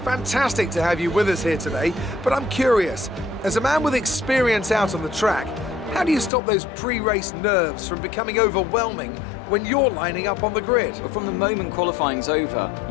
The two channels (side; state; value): right; drops out; at 6.3 s